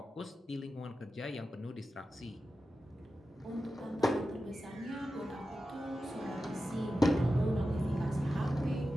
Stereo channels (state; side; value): normal; both; correlation 0.92